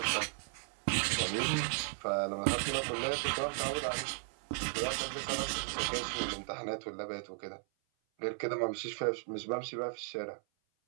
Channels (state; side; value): silent; left; 54 dB below the other